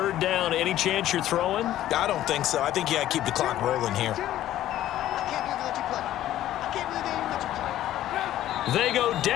down. Any chance you're throwing? I don't think so. I think you got to keep the clock rolling here. They go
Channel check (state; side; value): quieter; right; 13.1 dB